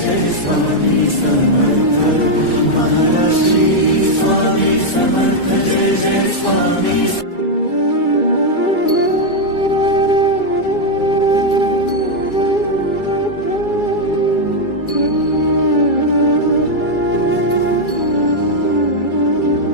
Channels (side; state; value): right; late; 2.3 ms